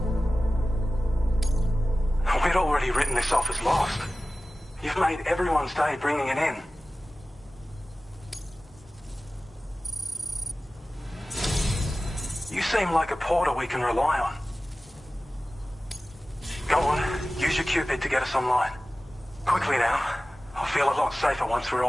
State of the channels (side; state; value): both; normal; correlation 0.96